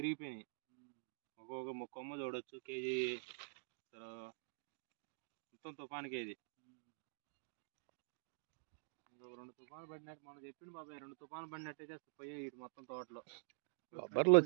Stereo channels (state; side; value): silent; left; digital silence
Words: ఇరిగిపోయినాయి. ఒక్కొక్క కొమ్మ చూడొచ్చు కేజీ మొత్తం తుఫానికి. ఇది 2 తుఫాను పడినట్టు మొన్న చెప్పింది బాబాయ్. 2 తుఫాను పడినట్టయితే పోయి ఇటు మొత్తం తోటలో బొబ్బర్లు